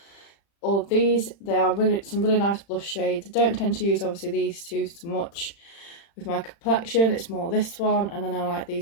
all of these. They are some really nice blush shades. I don't tend to use obviously these two so much with my complexion. It's more this one, and then I like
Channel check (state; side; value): late; right; 35 ms